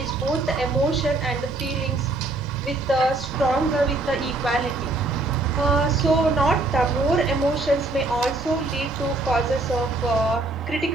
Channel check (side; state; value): left; quieter; 3.0 dB